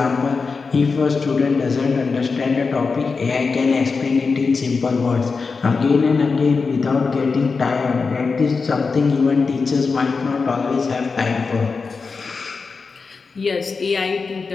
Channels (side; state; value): right; quieter; 4.7 dB